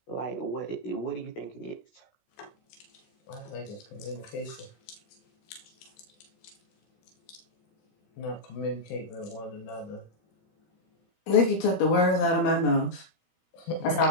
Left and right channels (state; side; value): late; right; 16 ms